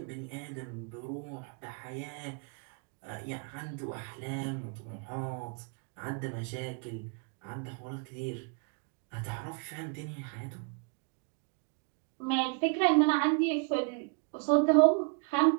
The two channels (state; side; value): quieter; left; 36.8 dB